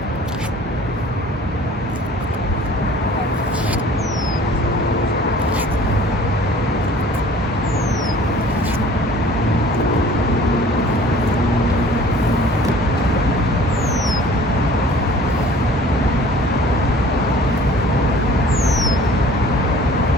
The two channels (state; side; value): normal; both; correlation 0.49